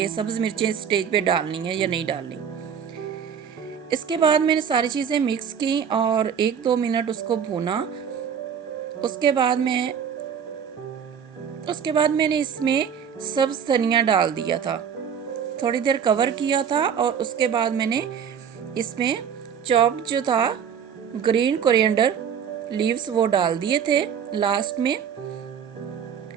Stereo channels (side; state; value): left; quieter; 7.8 dB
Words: सब्ज़ मिर्चें स्टेज पे डालनी है या नहीं डालनी। इसके बाद मैंने सारी चीज़ें मिक्स की और 1-2 मिनट उसको भूना। उसके बाद मैंने इसमें सब्ज़ धनिया डाल दिया था, थोड़ी देर कवर किया था और उसके बाद मैंने इसमें चॉप जो था ग्रीन कोरिएंडर लीव्स वो डाल दिए थे लास्ट में।